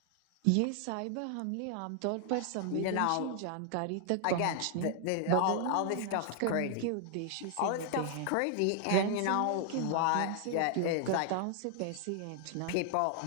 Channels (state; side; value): different; both; correlation 0.00